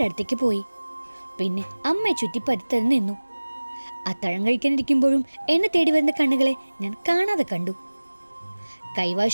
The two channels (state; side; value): inverted; both; correlation -1.00